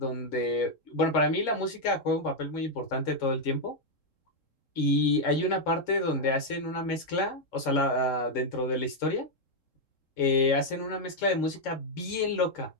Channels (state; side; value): late; right; 3.7 ms